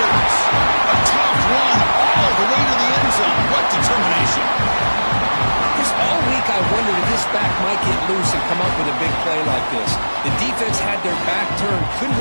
A tough run all the way to the end zone. What determination. This all week I wondered if this back might get loose and come up with a big play like this. The defense had their back turned, couldn't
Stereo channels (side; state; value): both; inverted; correlation -1.00